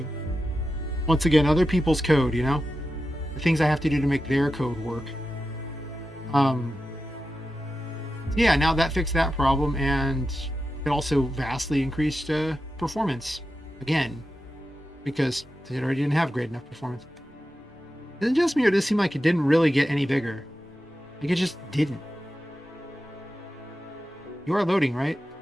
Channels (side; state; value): both; normal; correlation 0.91